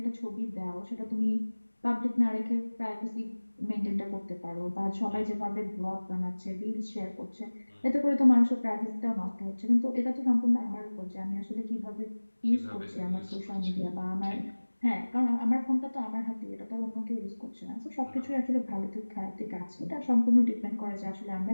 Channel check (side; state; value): both; inverted; correlation -1.00